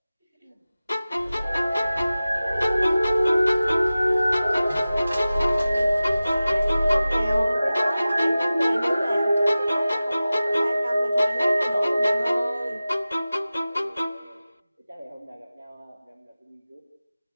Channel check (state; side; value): inverted; both; correlation -0.96